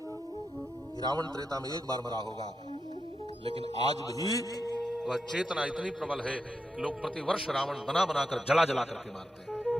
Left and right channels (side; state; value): both; normal; correlation 0.87